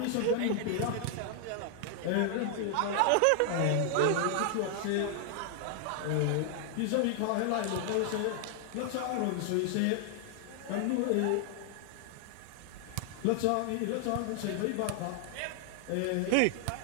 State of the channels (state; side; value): different; both; correlation 0.00